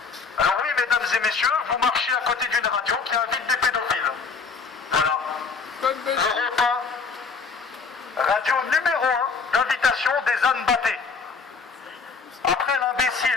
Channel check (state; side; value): quieter; right; 5.1 dB